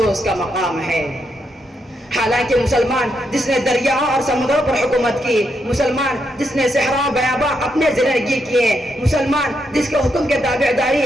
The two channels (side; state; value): both; normal; correlation 0.80